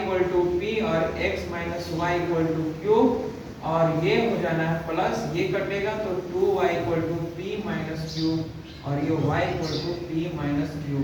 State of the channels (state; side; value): identical; both; correlation 1.00